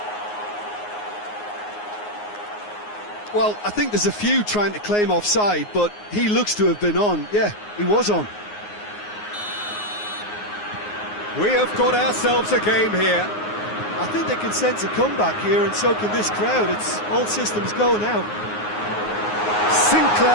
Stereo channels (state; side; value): late; right; 9.6 ms